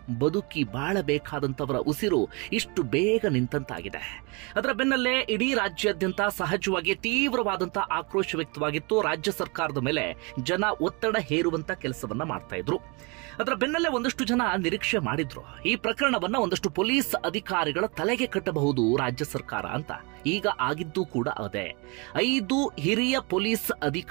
ಬದುಕಿ ಬಾಳಬೇಕಾದಂತವರ ಉಸಿರು ಇಷ್ಟು ಬೇಗ ನಿಂತಂತಾಗಿದೆ. ಅದರ ಬೆನ್ನಲ್ಲೇ ಇಡೀ ರಾಜ್ಯಾದ್ಯಂತ ಸಹಜವಾಗಿ ತೀವ್ರವಾದಂತಹ ಆಕ್ರೋಶ ವ್ಯಕ್ತವಾಗಿತ್ತು. ರಾಜ್ಯ ಸರ್ಕಾರದ ಮೇಲೆ ಜನ ಒತ್ತಡ ಹೇರುವಂತ ಕೆಲಸವನ್ನ ಮಾಡ್ತಾ ಇದ್ರು. ಅದರ ಬೆನ್ನಲ್ಲೇ ಒಂದಷ್ಟು ಜನ ನಿರೀಕ್ಷೆ ಮಾಡಿದ್ರು, ಈ ಪ್ರಕರಣವನ್ನ ಒಂದಷ್ಟು ಪೊಲೀಸ್ ಅಧಿಕಾರಿಗಳ ತಲೆಗೆ ಕಟ್ಟಬಹುದು ರಾಜ್ಯ ಸರ್ಕಾರ ಅಂತ. ಈಗ ಆಗಿದ್ದು ಕೂಡ ಅದೇ. 5 ಹಿರಿಯ ಪೊಲೀಸ್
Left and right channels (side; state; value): left; quieter; 29.8 dB